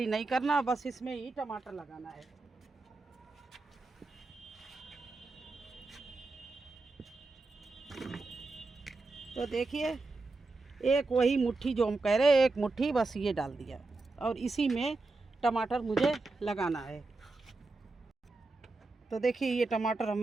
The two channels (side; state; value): left; quieter; 3.4 dB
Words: नहीं करना, बस इसमें ही टमाटर लगाना है। तो देखिए एक वही मुट्ठी जो हम कह रहे हैं, एक मुट्ठी बस ये डाल दिया और इसी में टमाटर मुझे लगाना है। तो देखिए ये टमाटर